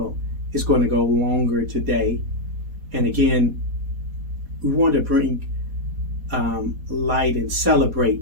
it's going to go longer today. And again, we want to bring light and celebrate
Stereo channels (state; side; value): late; left; 4.2 ms